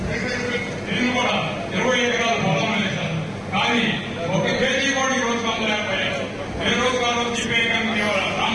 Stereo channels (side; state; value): both; identical; correlation 1.00